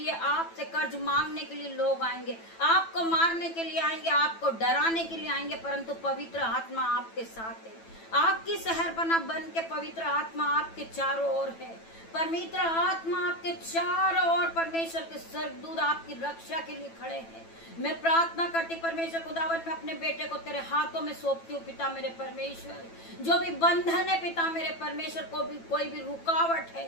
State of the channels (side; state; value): right; late; 9.0 ms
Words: आपसे कर्ज मांगने के लिए लोग आएंगे, आपको मारने के लिए आएंगे, आपको डराने के लिए आएंगे, परंतु पवित्र आत्मा आपके साथ है। आपकी शहरपना बन के पवित्र आत्मा आपके चारों ओर है। पवित्र आत्मा आपके चारों ओर, परमेश्वर के स्वर्गदूत आपकी रक्षा के लिए खड़े हैं। मैं प्रार्थना करती परमेश्वर खुदावन, मैं अपने बेटे को तेरे हाथों में सौंपती हूँ पिता मेरे परमेश्वर। जो भी बंधन है पिता मेरे परमेश्वर, कोई भी रुकावट